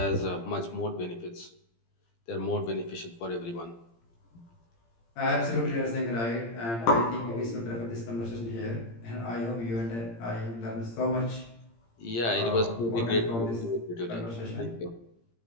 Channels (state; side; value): late; right; 17 ms